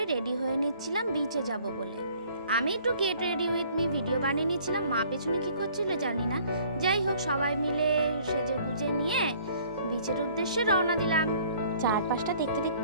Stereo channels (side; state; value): both; inverted; correlation -0.56